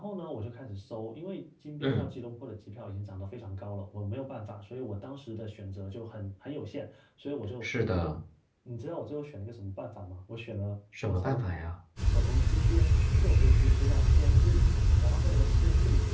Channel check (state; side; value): identical; both; correlation 1.00